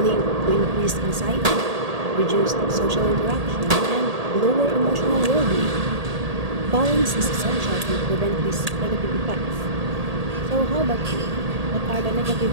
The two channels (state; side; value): late; left; 1.8 ms